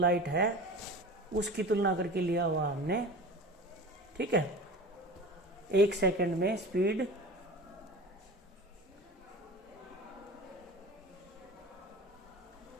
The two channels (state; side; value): normal; both; correlation 0.35